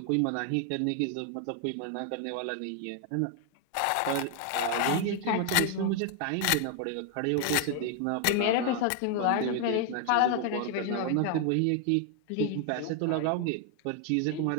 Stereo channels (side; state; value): both; different; correlation 0.00